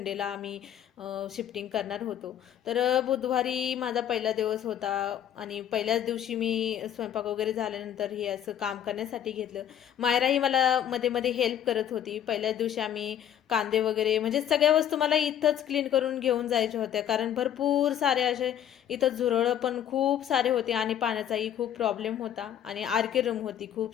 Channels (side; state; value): right; quieter; 10.2 dB